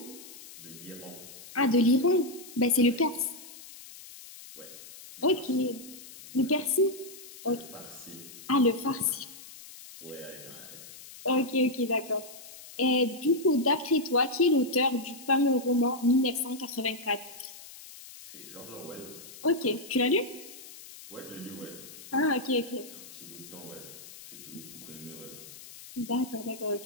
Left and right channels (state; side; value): noise; left; hiss, 16 dB below the sound